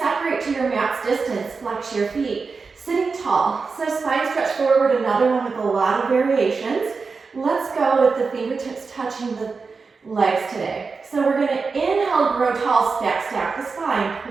to your mat's distance, flex your feet, sitting tall. So spine stretch forward, another one with a lot of variations. Let's go with the fingertips touching the legs today. So we're going to inhale, grow tall, stack the spine,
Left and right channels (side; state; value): left; quieter; 4.7 dB